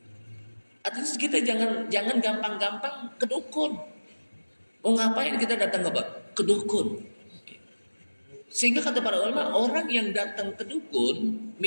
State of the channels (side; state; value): both; inverted; correlation -1.00